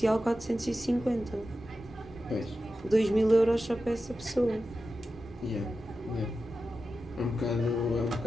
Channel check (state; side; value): normal; both; correlation 0.92